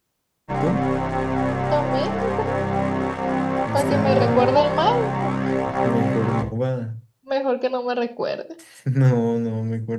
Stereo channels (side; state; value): both; identical; correlation 1.00